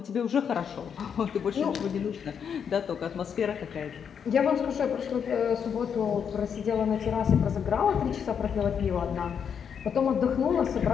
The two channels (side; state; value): right; quieter; 7.4 dB